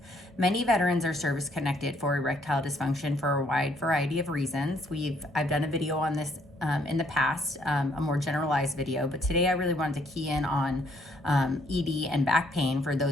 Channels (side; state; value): both; normal; correlation 0.68